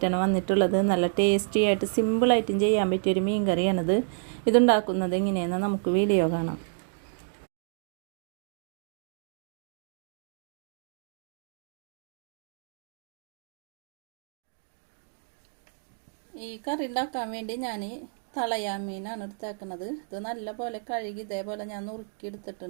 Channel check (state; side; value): silent; left; digital silence